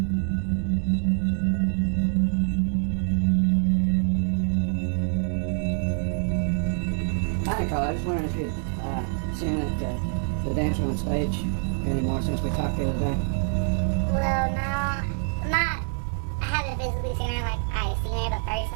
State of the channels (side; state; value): left; silent; 61 dB below the other